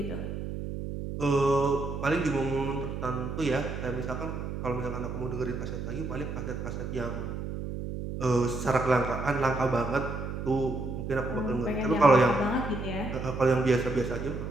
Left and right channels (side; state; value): right; noise; hum, 5 dB below the sound